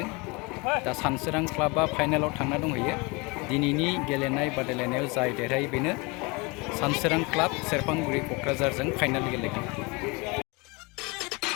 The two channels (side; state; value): right; quieter; 27.2 dB